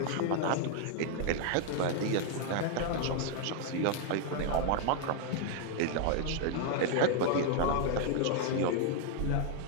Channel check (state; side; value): different; both; correlation 0.00